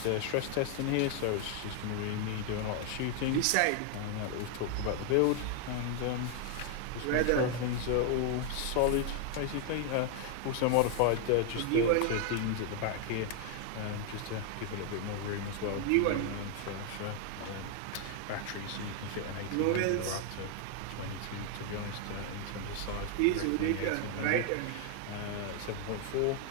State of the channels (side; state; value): both; different; correlation 0.00